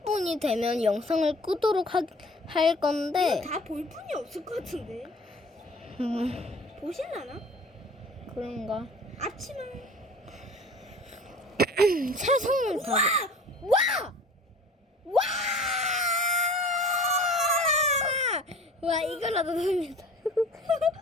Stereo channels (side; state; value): both; normal; correlation 0.45